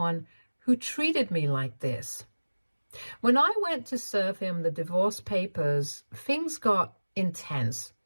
who treated me like this. When I went to serve him the divorce papers, things got intense.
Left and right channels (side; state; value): both; inverted; correlation -1.00